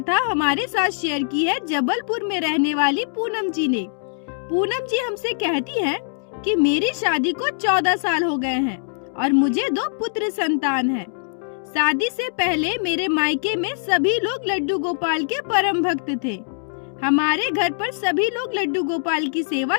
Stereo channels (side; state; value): right; silent; digital silence